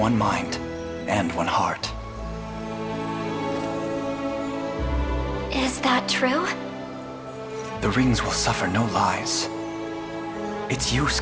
mind and one heart. Is that true? The rings will suffer no lies. It's you,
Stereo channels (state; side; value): identical; both; correlation 1.00